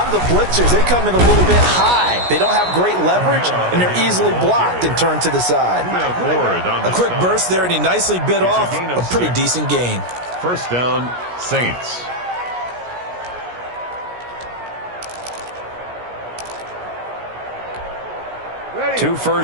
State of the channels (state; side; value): late; left; 17 ms